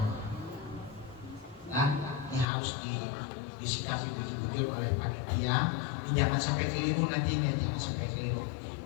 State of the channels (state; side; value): drops out; right; at 2.5 s